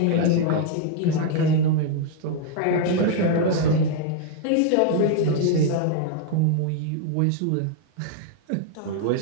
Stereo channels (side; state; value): both; different; correlation 0.00